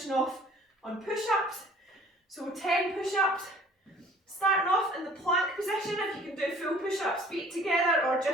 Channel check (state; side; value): normal; both; correlation 0.52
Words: off on push-ups. So 10 push-ups, starting off in the plank position. If you can do full push-ups, feet together or